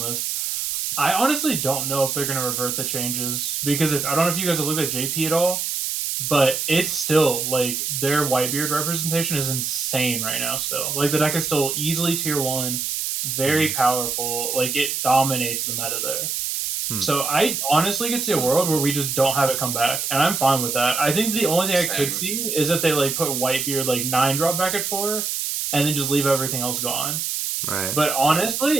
I honestly don't know if they're going to revert the changes, because I don't know if you guys have looked at JP at all, but it's still, like, their Whitebeard representation is insane right now still. Like, the deck is still easily tier 1, very powerful. Like, it dominates the meta there. So I honestly could see a world where we just don't have it come back, and I'm fine with that. I think the only thing I could see is if they, like, put Whitebeard, like, 9-drop back at 4, and then just leave everything else gone. Right. But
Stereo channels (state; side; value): noise; right; hiss, 2 dB below the sound